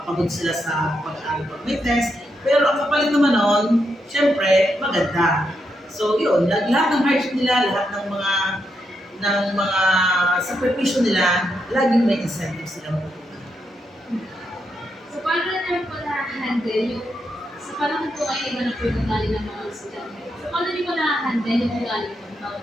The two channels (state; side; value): normal; both; correlation 0.82